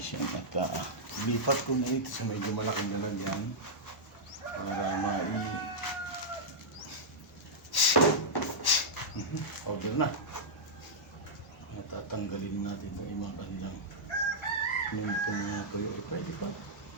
yan. At lipat ko na ito sa medyo malaking lalagyan para powder na. Natatanggalin natin itong mga kanilang itong mga tuyo. Pwede pa.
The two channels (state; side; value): normal; both; correlation -0.09